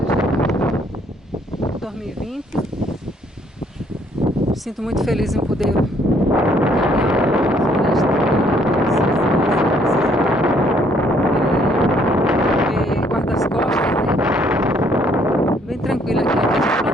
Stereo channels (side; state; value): both; normal; correlation 0.65